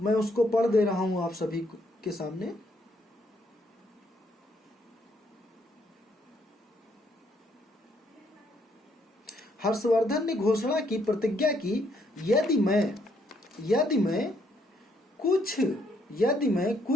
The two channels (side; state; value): both; normal; correlation 0.71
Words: उसको पढ़ दे रहा हूं आप सभी के सामने। हर्षवर्धन ने घोषणा की, प्रतिज्ञा की, यदि मैं